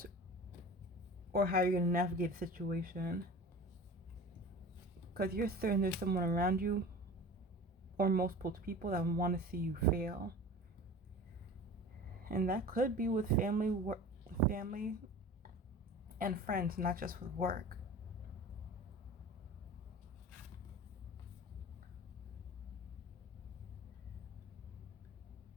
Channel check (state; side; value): normal; both; correlation 0.38